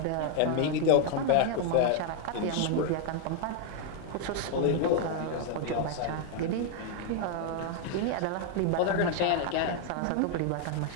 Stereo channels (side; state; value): both; different; correlation 0.00